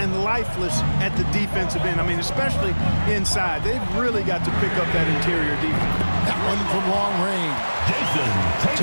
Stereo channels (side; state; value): both; inverted; correlation -1.00